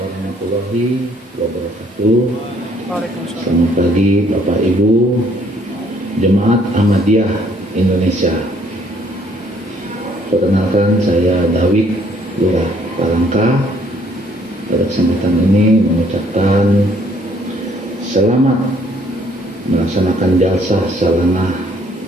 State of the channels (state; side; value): normal; both; correlation 0.64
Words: wabarakatuh. Waalaikumsalam. Selamat pagi Bapak Ibu Jemaat Ahmadiyah Indonesia. Perkenalkan saya David Lurah Palangka. Pada kesempatan ini mengucapkan selamat melaksanakan jalsa salana